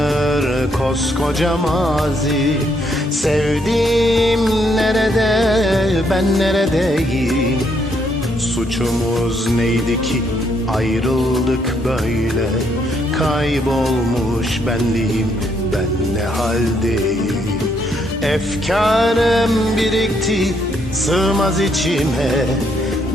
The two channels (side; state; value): both; normal; correlation 0.73